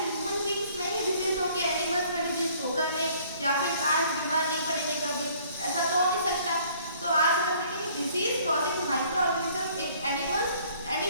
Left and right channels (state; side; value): inverted; both; correlation -0.58